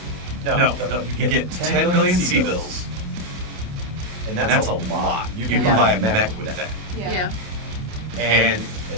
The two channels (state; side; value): late; left; 28 ms